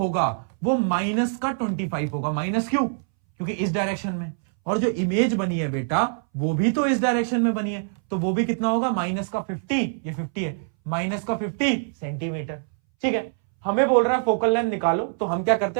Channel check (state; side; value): silent; left; 61 dB below the other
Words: वो माइनस का 25 होगा। माइनस क्यों, क्योंकि इस डायरेक्शन में, और जो इमेज बनी है बेटा वो भी तो इस डायरेक्शन में बनी है, तो वो भी कितना होगा, माइनस का 50, ये 50 है, माइनस का 50 सेंटीमीटर। ठीक है, हमें बोल रहा है फोकल लेंथ निकालो, तो हम क्या करते